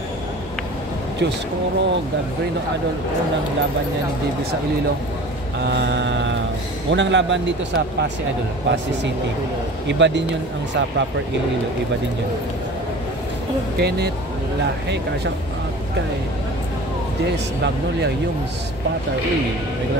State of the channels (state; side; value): normal; both; correlation 0.40